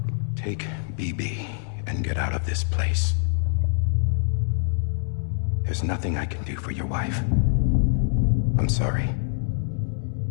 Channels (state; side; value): silent; right; digital silence